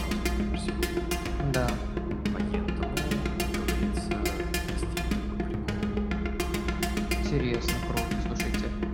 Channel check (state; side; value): identical; both; correlation 1.00